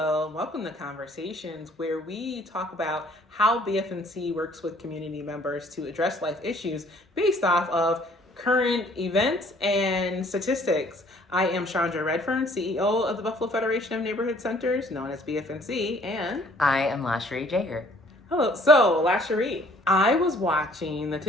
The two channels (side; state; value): both; normal; correlation 0.58